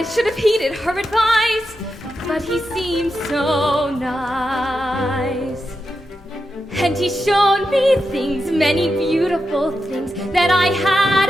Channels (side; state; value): both; normal; correlation 0.88